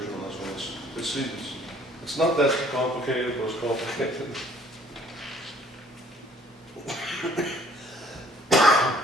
on this one. It's not that complicated, but it's complicated.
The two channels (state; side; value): normal; both; correlation 0.57